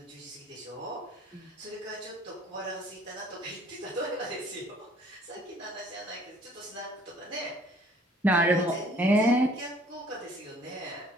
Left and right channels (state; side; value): normal; both; correlation 0.57